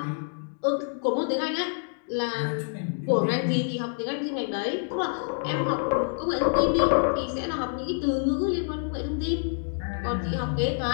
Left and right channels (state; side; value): silent; right; digital silence